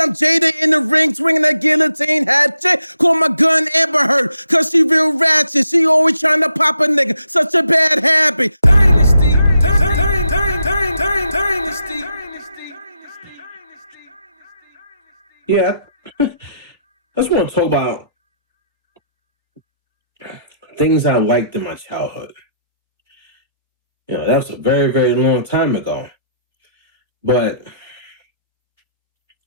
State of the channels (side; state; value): both; inverted; correlation -0.76